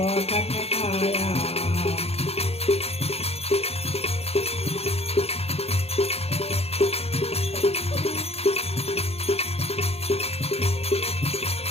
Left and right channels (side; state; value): right; late; 0.29 ms